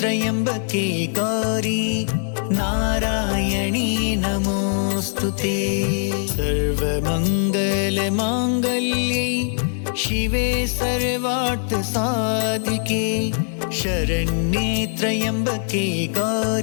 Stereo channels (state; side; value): silent; right; 65 dB below the other